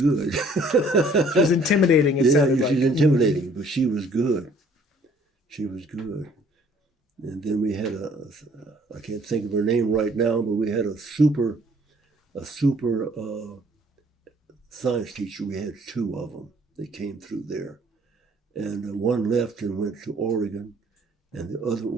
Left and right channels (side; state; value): both; normal; correlation 0.59